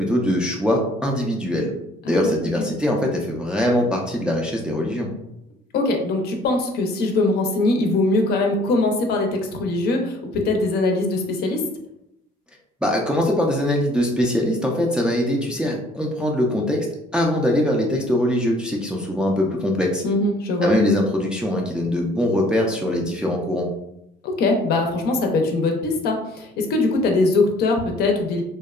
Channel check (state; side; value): normal; both; correlation 0.58